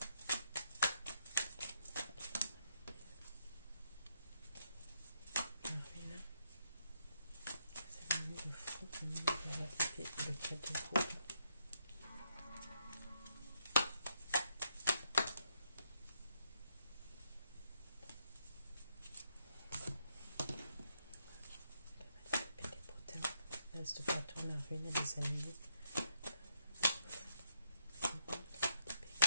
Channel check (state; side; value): inverted; both; correlation -0.77